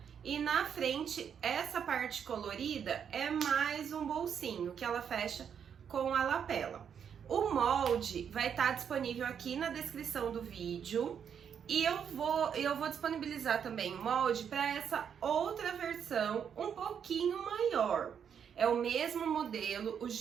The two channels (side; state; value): left; quieter; 7.8 dB